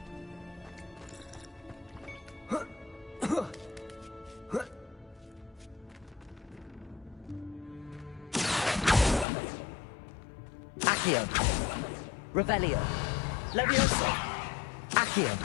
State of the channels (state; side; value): drops out; right; at 9.2 s